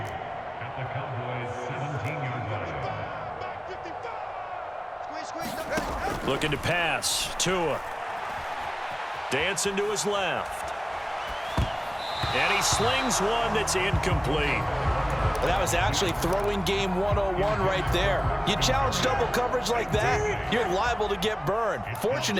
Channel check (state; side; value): identical; both; correlation 1.00